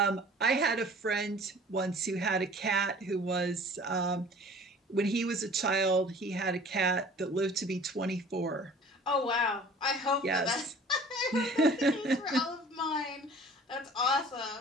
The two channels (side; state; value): both; normal; correlation 0.48